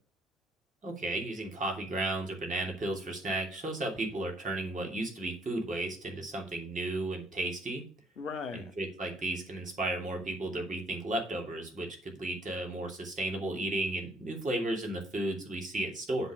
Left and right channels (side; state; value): both; normal; correlation 0.67